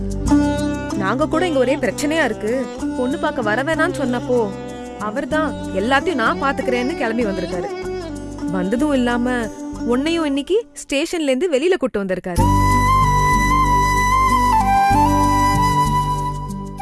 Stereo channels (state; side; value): identical; both; correlation 1.00